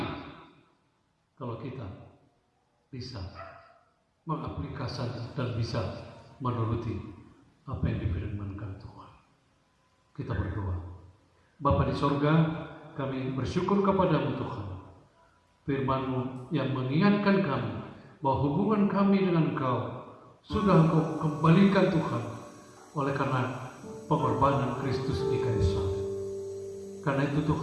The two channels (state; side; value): identical; both; correlation 1.00